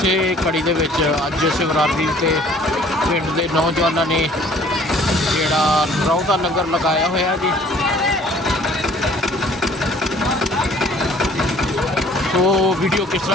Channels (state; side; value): normal; both; correlation 0.55